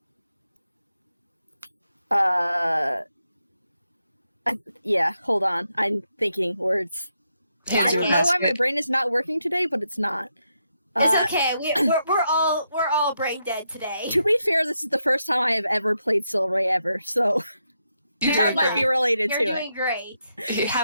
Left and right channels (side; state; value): both; inverted; correlation -0.82